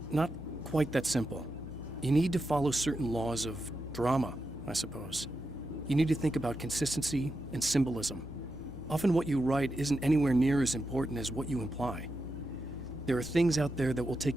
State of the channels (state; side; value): normal; both; correlation 0.88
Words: not quite that simple. You need to follow certain laws of drama, I suppose. You need to think about consistency and symbolism. Often what you write isn't anywhere near as important as what you imply. There are things out there that will